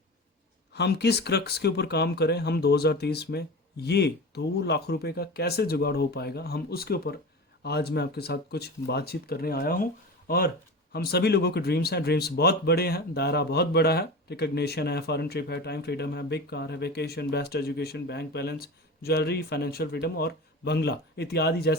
हम किस क्रक्स के ऊपर काम करें, हम 2030 में ये 2 लाख रुपए का कैसे जुगाड़ हो पाएगा, हम उसके ऊपर आज मैं आपके साथ कुछ बातचीत करने आया हूँ। और हम सभी लोगों के ड्रीम्स हैं, ड्रीम्स बहुत बड़े हैं, दायरा बहुत बड़ा है। रिकग्निशन है, फॉरेन ट्रिप है, टाइम फ्रीडम है, बिग कार है, vacation, best education, bank balance, jewellery, financial freedom और बंगला इत्यादि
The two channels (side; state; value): both; normal; correlation 0.30